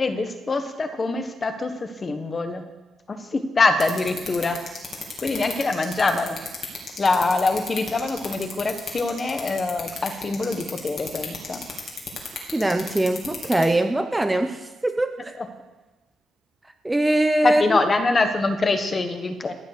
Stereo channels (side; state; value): both; normal; correlation 0.90